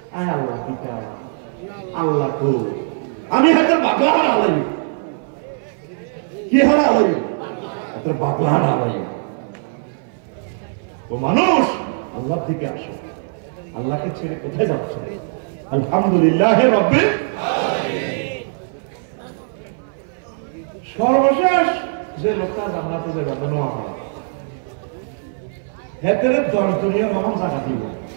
আয় আল্লাহ পিতা আল্লাহ কো আমি হাতে বাগলা আলাই কি হারা আলাই হাতে বাগলা আলাই ও মানুষ আল্লাহর দিকে আসো আল্লাহকে ছেড়ে কোথায় যাচ্ছ আলহামদুলিল্লাহ রাব্বিল আলামিন সর্বশেষ যে লোকটা জান্নাতে যাবে নোয়া হয় হেতের 10 দুনিয়া মহান জায়গা দিব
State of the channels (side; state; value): left; silent; 60 dB below the other